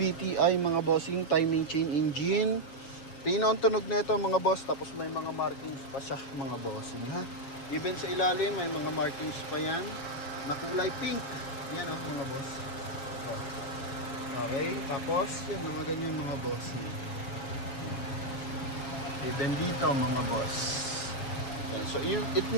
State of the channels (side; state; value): right; late; 7.3 ms